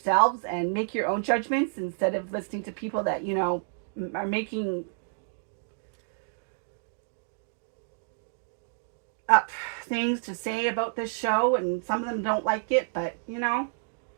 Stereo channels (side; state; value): left; silent; digital silence